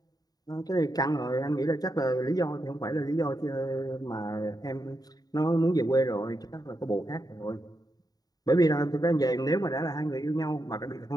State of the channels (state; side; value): late; right; 0.18 ms